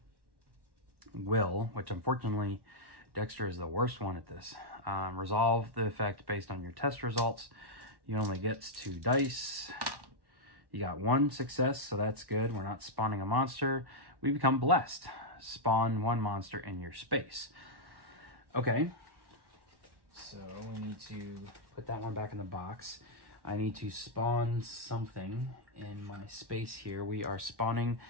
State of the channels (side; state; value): left; late; 1.1 ms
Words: will, which unfortunately Dexter is the worst one at this. Resolve the effect based on your test results. You only get 2 dice. You got 1 success, so that's good. We're not spawning a monster. We become blessed. Spawn 1 monster in your space. Okay. So we need to put that one back in the box. I need to spawn something in my space here. We are spawning